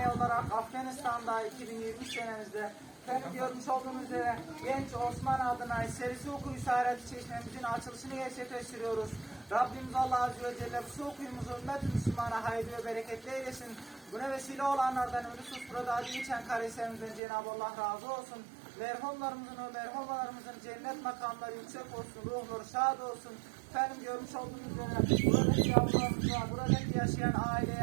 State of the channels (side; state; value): left; drops out; at 17.2 s